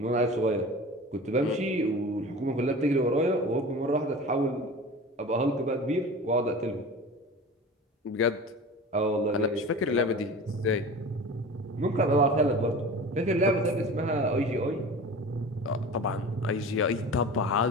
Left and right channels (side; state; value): both; normal; correlation 0.36